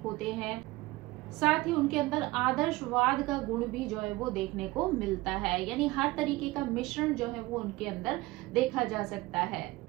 होते हैं, साथ ही उनके अंदर आदर्शवाद का गुण भी जो है वो देखने को मिलता है। यानी हर तरीके का मिश्रण जो है वो उनके अंदर देखा जा सकता है,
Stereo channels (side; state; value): left; quieter; 20.1 dB